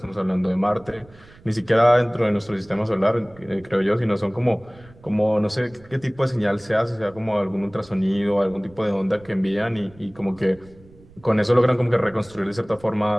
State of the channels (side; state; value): right; noise; rumble, 25 dB below the sound